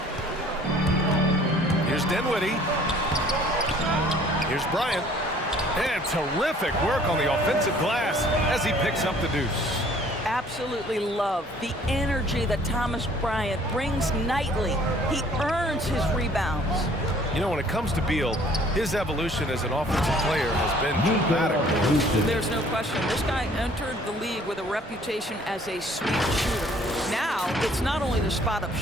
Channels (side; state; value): both; normal; correlation 0.56